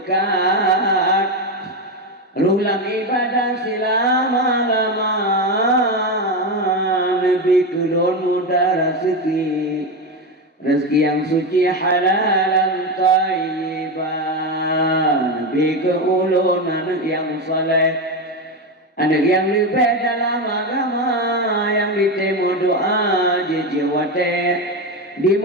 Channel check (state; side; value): normal; both; correlation 0.14